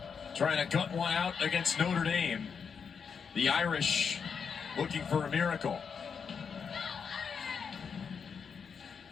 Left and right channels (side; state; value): right; quieter; 6.3 dB